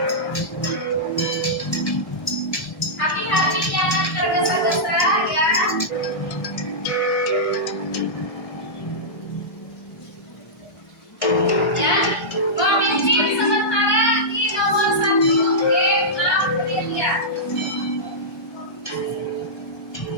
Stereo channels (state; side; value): late; right; 1.2 ms